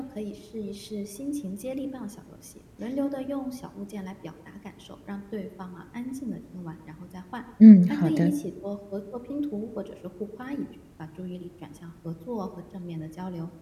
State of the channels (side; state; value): both; identical; correlation 1.00